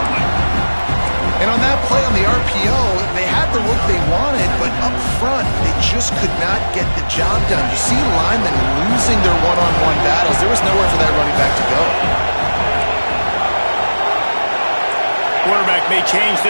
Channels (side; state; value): both; inverted; correlation -1.00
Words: one. And on that play on the RPO, they had the look they wanted, but up front, they just could not get the job done. You see linemen losing their one-on-one battles. There was nowhere for that running back to go. Quarterback may change